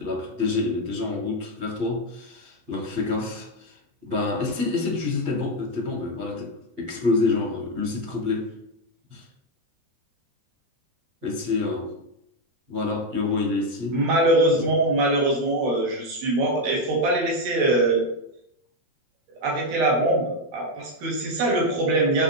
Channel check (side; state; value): left; late; 8.3 ms